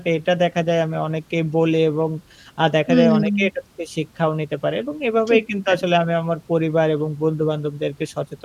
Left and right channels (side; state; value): both; identical; correlation 1.00